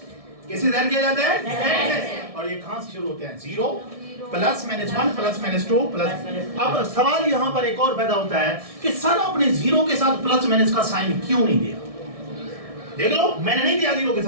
کسے ظاہر کیا جاتا ہے؟ Z سے. اور یہ کہاں سے شروع ہوتے ہیں؟ 0 + -1 + -2 اب سوال یہاں پر ایک اور پیدا ہوتا ہے کہ سر آپ نے 0 کے ساتھ پلس مائنس کا سائن کیوں نہیں دیا؟ دیکھ لو، میں نے نہیں دیا 0 کے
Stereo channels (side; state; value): left; late; 1.6 ms